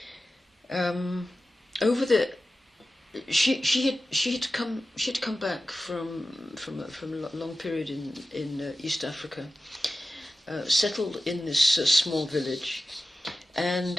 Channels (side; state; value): both; normal; correlation 0.94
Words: She had come back from a long period in East Africa, settled in this small village,